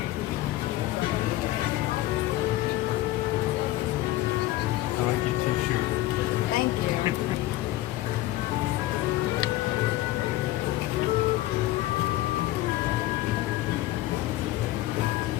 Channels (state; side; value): quieter; right; 16.2 dB